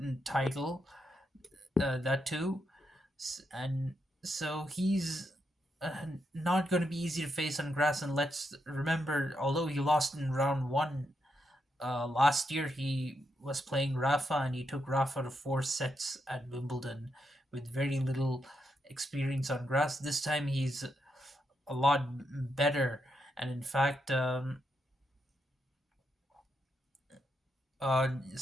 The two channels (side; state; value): both; normal; correlation 0.82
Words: title, that too, and so he's not going to be easy to face on grass. And let's remember, although he lost in round one last year, he was playing Rafa, and he took Rafa to four sets at Wimbledon with very little experience on grass. This time he's a lot better, and in fact,